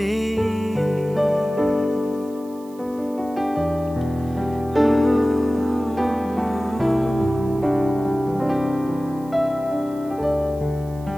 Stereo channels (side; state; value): right; noise; hiss, 26 dB below the sound